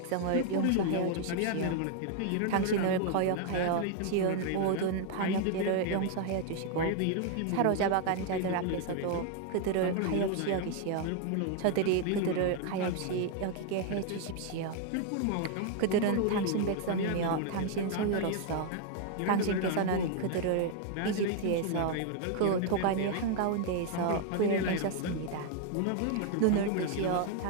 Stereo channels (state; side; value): different; both; correlation 0.00